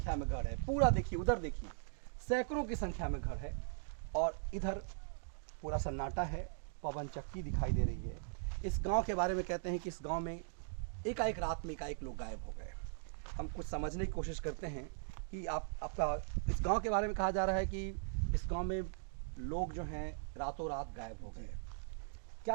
में घर है। पूरा देखिए, उधर देखिए, सैकड़ों की संख्या में घर है और इधर पूरा सन्नाटा है, पवन चक्की दिखाई दे रही है। इस गांव के बारे में कहते हैं कि इस गांव में एकाएक रात में एकाएक लोग गायब हो गए। हम कुछ समझने की कोशिश करते हैं कि आपका इस गांव के बारे में कहा जा रहा है कि इस गांव में लोग जो हैं रातों रात गायब हो गए।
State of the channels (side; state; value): left; silent; digital silence